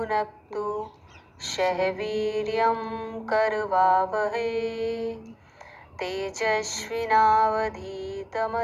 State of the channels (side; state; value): both; identical; correlation 1.00